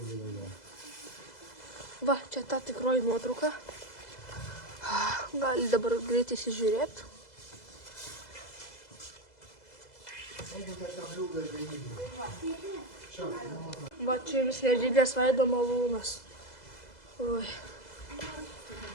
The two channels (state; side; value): late; right; 2.0 ms